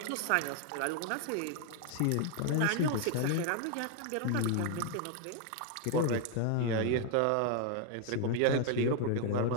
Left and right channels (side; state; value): both; different; correlation 0.00